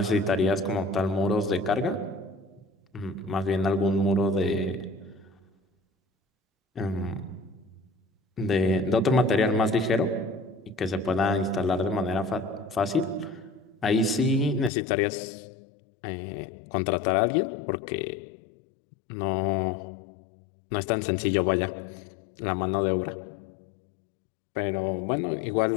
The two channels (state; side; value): drops out; right; at 14.7 s